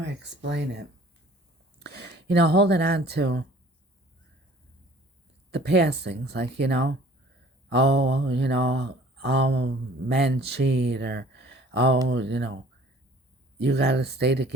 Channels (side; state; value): both; normal; correlation 0.52